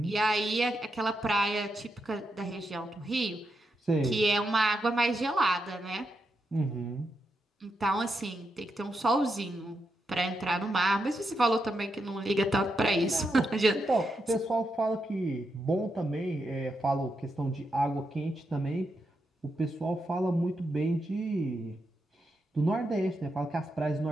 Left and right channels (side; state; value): both; normal; correlation 0.84